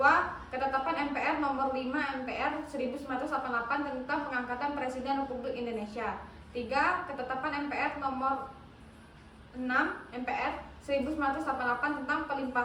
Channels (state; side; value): identical; both; correlation 1.00